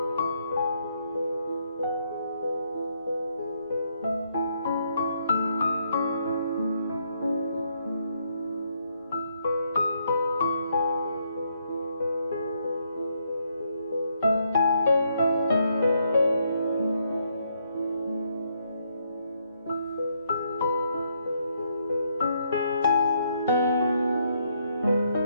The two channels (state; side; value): inverted; both; correlation -0.74